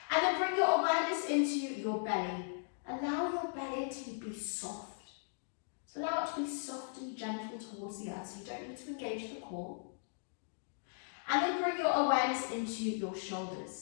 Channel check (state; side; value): silent; right; digital silence